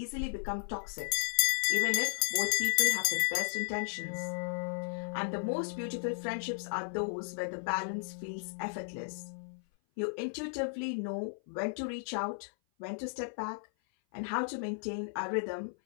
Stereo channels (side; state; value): right; silent; 55 dB below the other